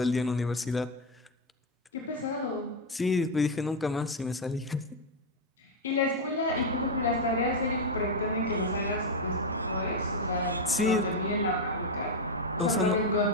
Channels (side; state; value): both; normal; correlation 0.04